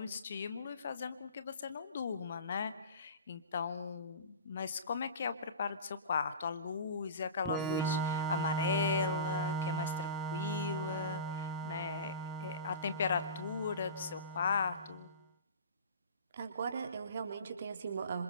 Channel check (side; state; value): both; inverted; correlation -0.34